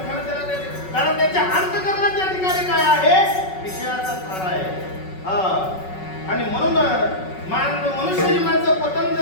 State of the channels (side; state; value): right; late; 5.4 ms